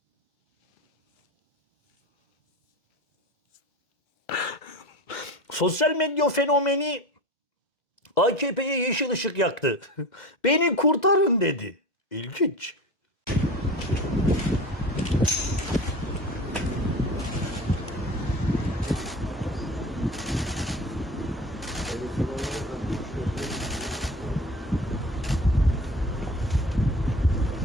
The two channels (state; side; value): normal; both; correlation 0.33